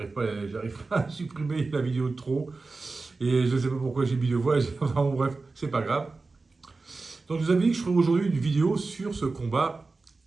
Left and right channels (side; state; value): left; quieter; 3.8 dB